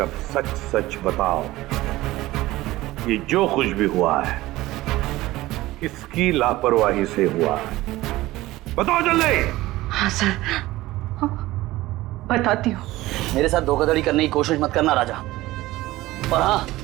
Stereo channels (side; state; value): left; quieter; 17.7 dB